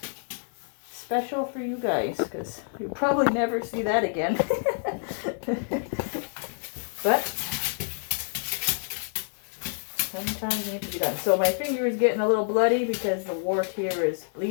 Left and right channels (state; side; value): silent; right; digital silence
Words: special for you guys, because you'll probably never see that again. But sometimes it needs to be done. So my finger is getting a little bloody because the wart here is